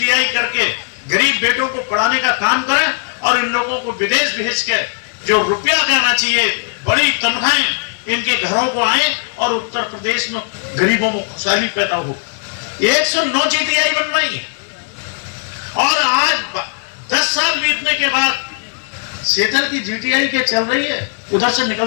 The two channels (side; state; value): right; silent; digital silence